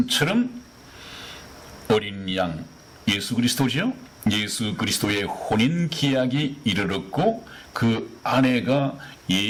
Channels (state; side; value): identical; both; correlation 1.00